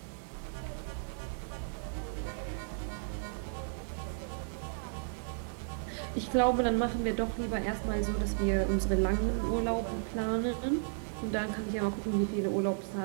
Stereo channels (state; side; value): silent; left; 55 dB below the other